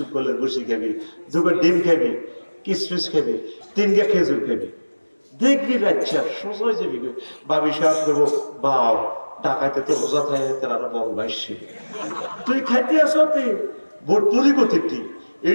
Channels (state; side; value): inverted; both; correlation -1.00